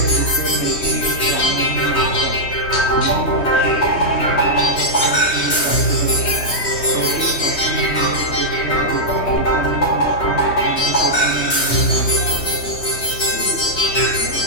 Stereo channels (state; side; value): late; right; 3.2 ms